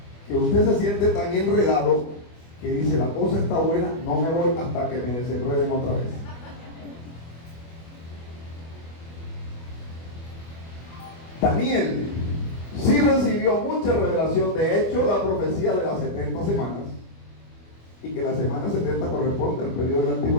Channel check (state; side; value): late; right; 25 ms